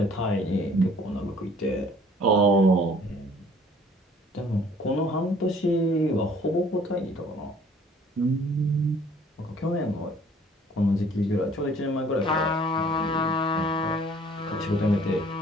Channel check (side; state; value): both; normal; correlation 0.56